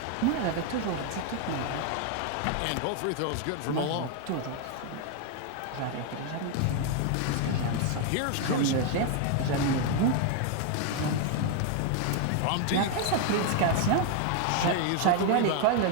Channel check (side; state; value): both; different; correlation 0.01